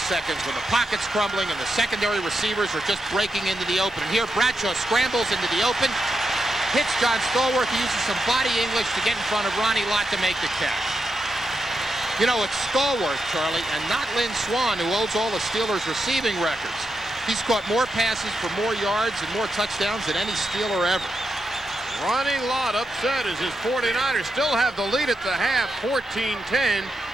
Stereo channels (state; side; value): normal; both; correlation 0.84